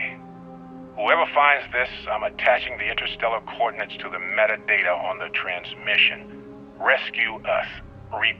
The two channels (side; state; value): both; identical; correlation 1.00